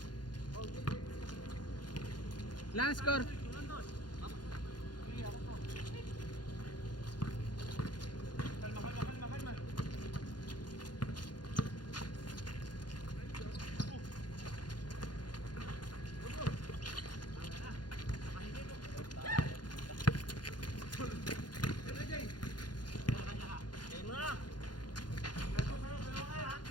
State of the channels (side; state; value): right; late; 0.70 ms